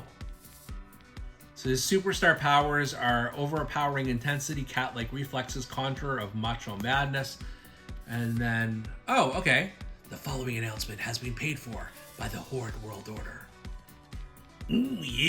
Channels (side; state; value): both; identical; correlation 1.00